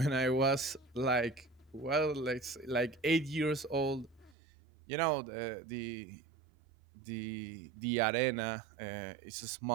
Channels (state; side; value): drops out; left; at 4.4 s